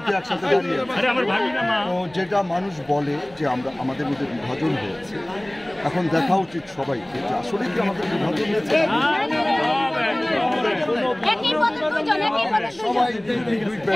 যেটা মানুষ বলে যে আমরা আমাদের মধ্যে বিভাজন হয়েছে, এখন দেখা উচিত সবাইকে যে আসলে কি আমাদের বিভাজন হয়েছে।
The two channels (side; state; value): right; noise; rumble, 26 dB below the sound